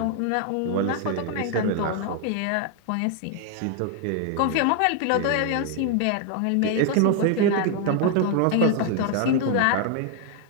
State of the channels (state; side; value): different; both; correlation 0.00